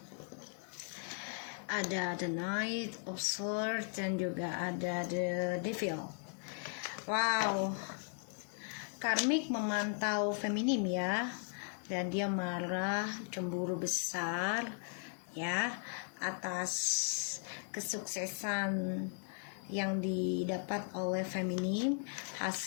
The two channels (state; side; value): silent; right; 53 dB below the other